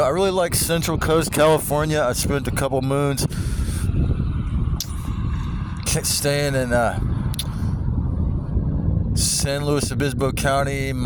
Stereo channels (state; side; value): identical; both; correlation 1.00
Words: really like Central Coast California. I spent a couple moons staying in San Luis Obispo County.